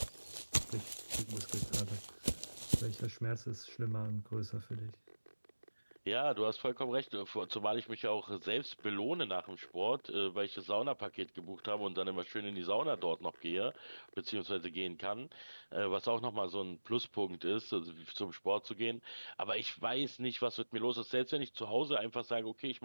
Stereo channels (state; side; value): inverted; both; correlation -1.00